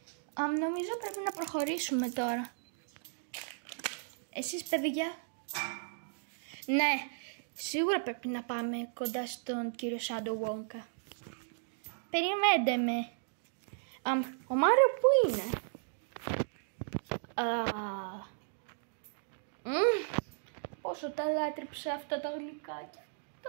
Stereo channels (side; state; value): left; silent; digital silence